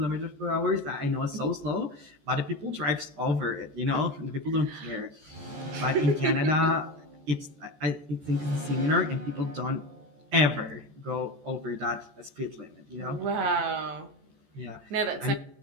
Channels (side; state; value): left; late; 14 ms